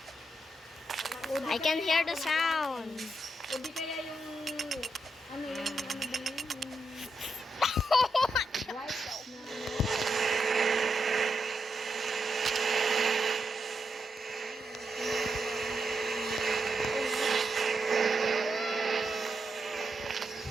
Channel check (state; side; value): normal; both; correlation 0.83